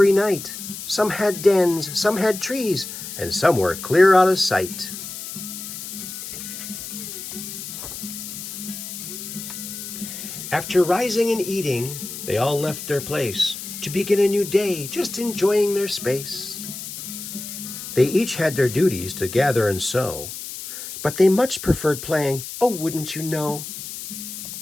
night. Some had dens, some had trees, and some were clear out of sight. After rising and eating, they all left their place to begin a new day, just enjoying their space. They each had their duties to gather and sow, but they much preferred playing, oh, wouldn't you know?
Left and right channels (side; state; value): left; noise; hiss, 9 dB below the sound